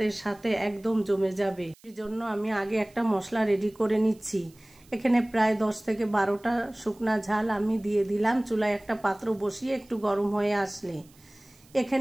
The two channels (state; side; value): noise; right; hiss, 28 dB below the sound